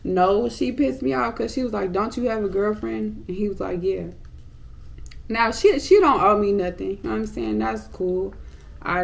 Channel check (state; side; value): identical; both; correlation 1.00